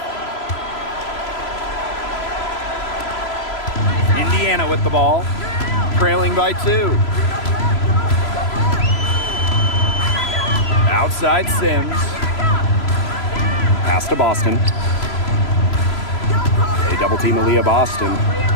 Indiana with the ball, trailing by 2. Outside Sims. Pass to Boston. They double team Aaliyah Boston.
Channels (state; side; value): late; right; 3.0 ms